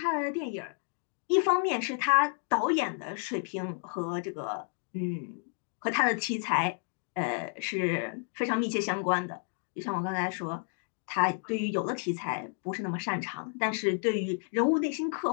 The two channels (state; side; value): silent; right; 57 dB below the other